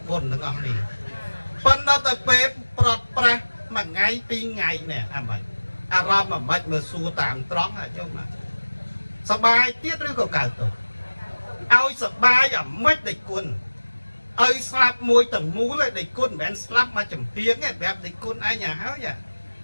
បុណ្យទាំងអស់នេះប៉ុន្តែទៅពេលប្រត់ប្រាស់មួយថ្ងៃពីរថ្ងៃនេះអាម៉េចអារម្មណ៍អាម៉េចមើលសួរតាមត្រង់ញោមសប្បាយទៀតឬក៏កើតទុក្ខឲ្យសប្បាយអាម៉េចដេចគុណឲ្យស្លាប់មួយទាំងមូលឯដេចគុណមិនមែនស្លាប់មកចំហៀងទេប្រាប់ដេចគុណឯងហើយ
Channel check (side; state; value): both; inverted; correlation -1.00